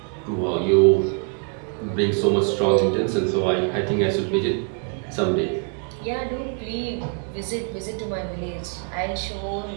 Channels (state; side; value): quieter; left; 35.2 dB